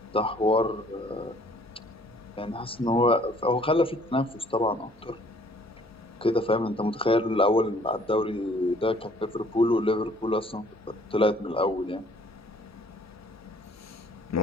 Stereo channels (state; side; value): normal; both; correlation 0.58